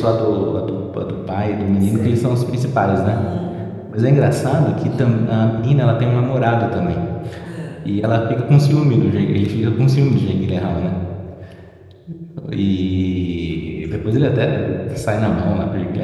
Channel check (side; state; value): both; identical; correlation 1.00